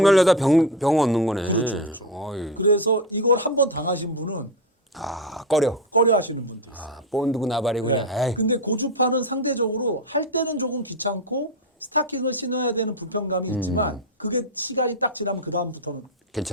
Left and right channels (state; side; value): normal; both; correlation 0.13